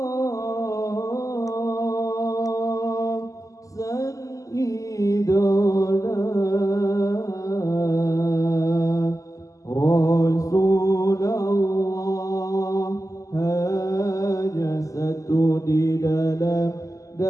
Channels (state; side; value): late; right; 0.16 ms